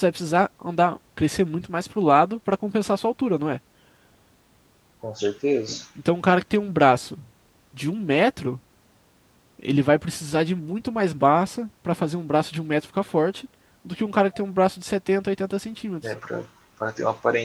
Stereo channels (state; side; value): identical; both; correlation 1.00